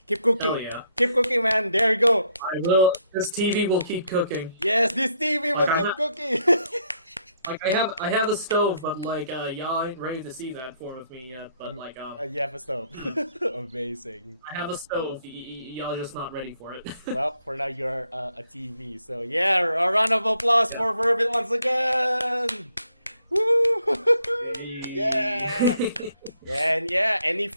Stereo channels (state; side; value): inverted; both; correlation -0.71